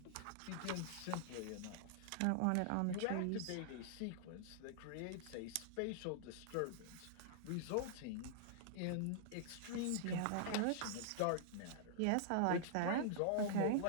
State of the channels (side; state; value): both; different; correlation -0.01